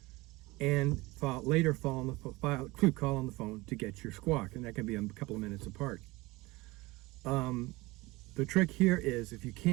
and later call on the phone to get your squawk, and that can be a couple of minutes apart. The trick here is, if you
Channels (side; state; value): left; quieter; 21.7 dB